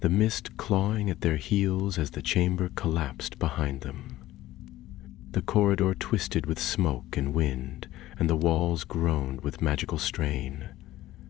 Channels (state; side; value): quieter; right; 15.5 dB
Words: mist clawing at their heels as the chamber collapsed behind them. The corridor twisted with smoke and wind, and the walls groaned with magical strain.